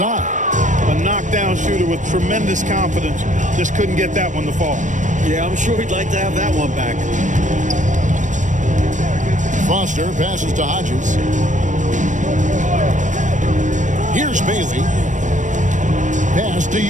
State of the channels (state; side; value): late; left; 0.36 ms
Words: A knockdown shooter with tremendous confidence. Just couldn't get that one to fall. Yeah, I'm sure he'd like to have that one back. Foster passes to Hodges. Here's Bailey. Pass to